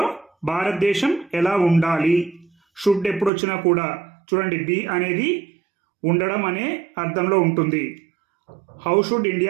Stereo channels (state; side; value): drops out; left; at 3.3 s